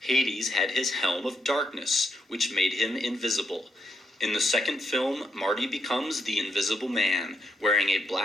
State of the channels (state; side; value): normal; both; correlation 0.79